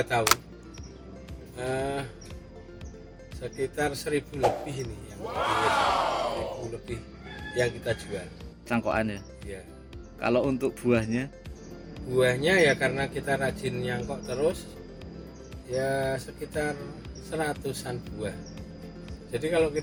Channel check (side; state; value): both; identical; correlation 1.00